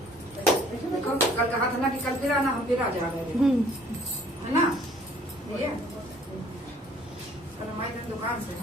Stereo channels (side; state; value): both; normal; correlation 0.57